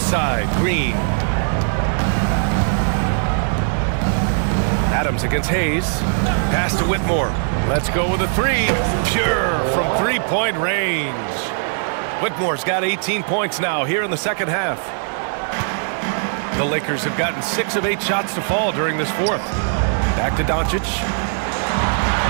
Green. Adams against Hayes. Pass to Whitmore. Let's go with a 3. Pure from 3-point range. Whitmore's got 18 points now here in the second half. The Lakers have gotten 6 of 8 shots to fall during this 4th. Back to Doncic.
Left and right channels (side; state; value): left; silent; 56 dB below the other